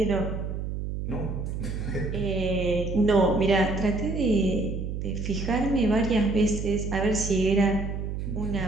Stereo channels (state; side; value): noise; right; hum, 4 dB below the sound